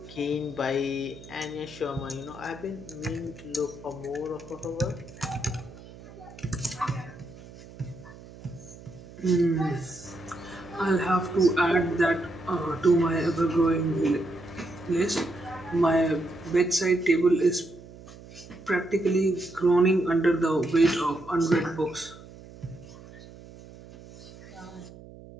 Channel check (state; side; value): noise; right; hum, 18 dB below the sound